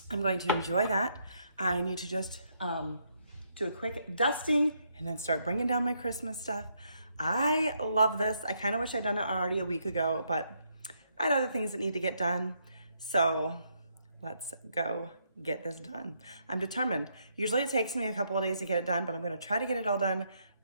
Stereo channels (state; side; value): inverted; both; correlation -0.75